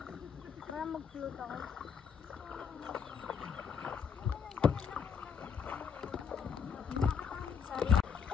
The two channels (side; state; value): right; quieter; 6.7 dB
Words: Para mag-float ako. Sorry.